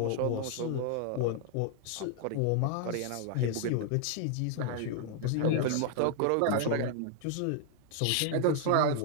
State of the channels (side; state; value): both; different; correlation -0.01